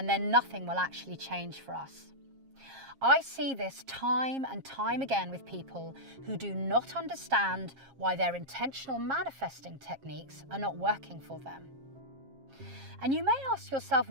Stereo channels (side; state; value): left; late; 7.4 ms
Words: then nothing will actually change for us. I see this time and time again with people who do not understand why their intentional manifesting techniques are not working for them. And you may ask yourself,